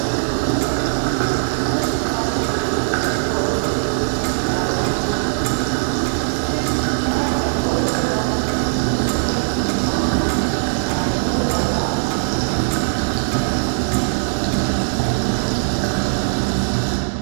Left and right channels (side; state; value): left; silent; digital silence